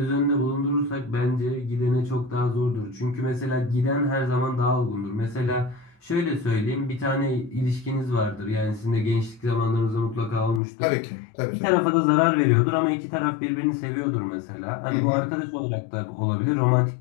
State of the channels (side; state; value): right; drops out; at 10.6 s